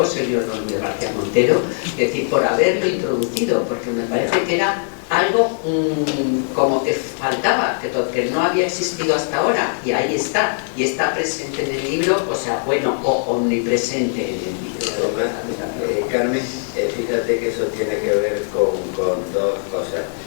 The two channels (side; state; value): right; silent; digital silence